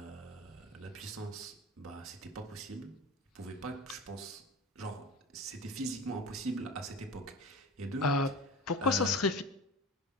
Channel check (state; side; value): normal; both; correlation 0.32